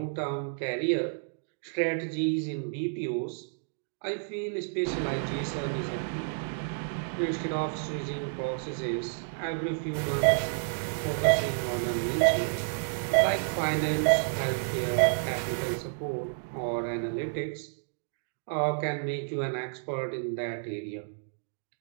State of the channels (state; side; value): silent; left; digital silence